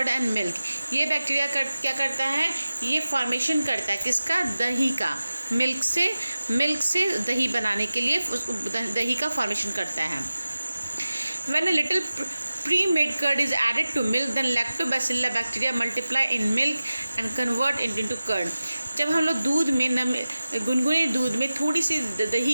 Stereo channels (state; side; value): inverted; both; correlation -0.95